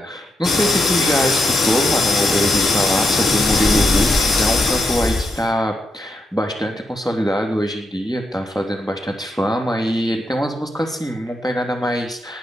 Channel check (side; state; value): both; normal; correlation 0.82